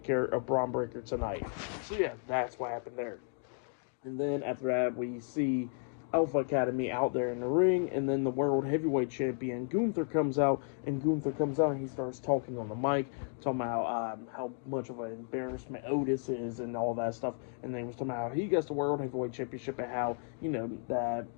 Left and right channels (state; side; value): silent; right; 55 dB below the other